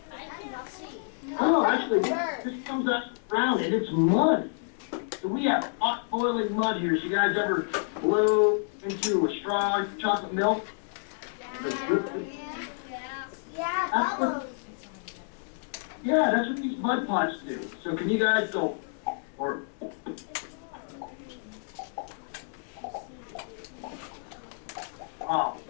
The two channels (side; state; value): right; silent; digital silence